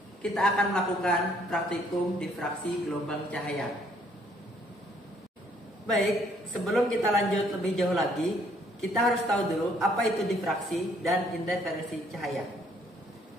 kita akan melakukan praktikum difraksi gelombang cahaya. Baik, sebelum kita lanjut lebih jauh lagi, kita harus tahu dulu apa itu difraksi dan interferensi cahaya.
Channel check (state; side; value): normal; both; correlation 0.65